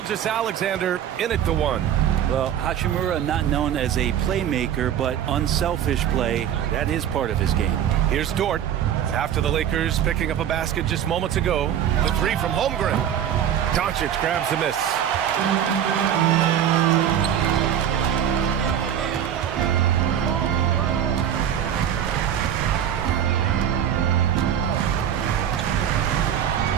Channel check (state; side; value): quieter; left; 9.7 dB